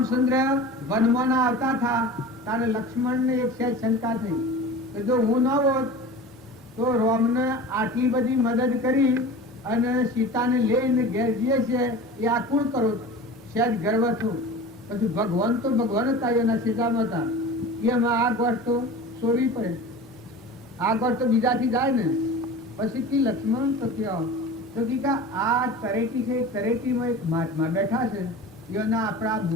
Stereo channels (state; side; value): normal; both; correlation 0.36